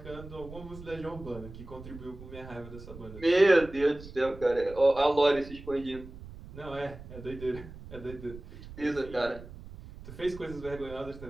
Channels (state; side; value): noise; right; rumble, 15 dB below the sound